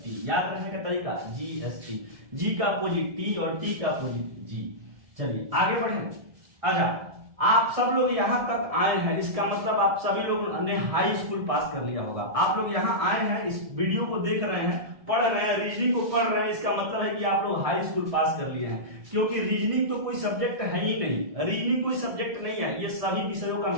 याद रखने का तरीका जीएसटी। जी का अपोजिट टी और टी का अपोजिट जी। चलिए आगे बढ़ें। अच्छा, आप सब लोग यहां तक आए हैं, इसका मतलब आप सभी लोग ने हाई स्कूल पास कर लिया होगा। आप लोग यहां आए हैं, इस वीडियो को देख रहे हैं, पढ़ रहे हैं, रीजनिंग को पढ़ रहे हैं, इसका मतलब है कि आप लोग हाई स्कूल पास कर लिए हैं। क्योंकि रीजनिंग तो कोई सब्जेक्ट है ही नहीं, रीजनिंग कोई सब्जेक्ट नहीं है, ये सभी विषयों का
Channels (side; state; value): left; late; 1.7 ms